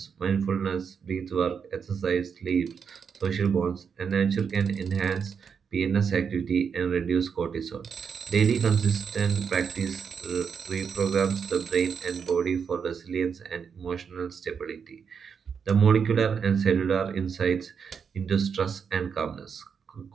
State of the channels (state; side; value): quieter; left; 6.5 dB